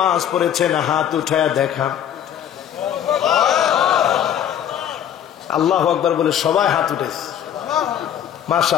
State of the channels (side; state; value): right; quieter; 9.9 dB